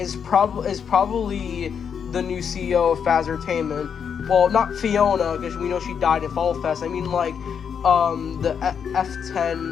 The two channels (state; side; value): quieter; right; 7.2 dB